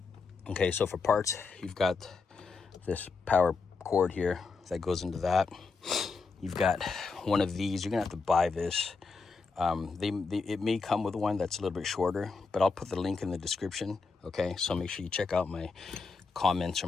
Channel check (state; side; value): quieter; right; 4.5 dB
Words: Okay, so for parts, you've got this power cord here that goes into that. You've got one of these. You're gonna have to buy this. It may come with one that's a little bit shorter, but I'll put the link in the description. Okay, so make sure you check out my comments